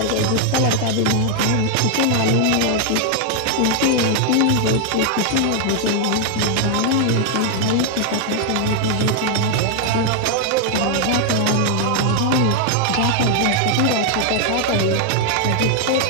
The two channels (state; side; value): different; both; correlation 0.00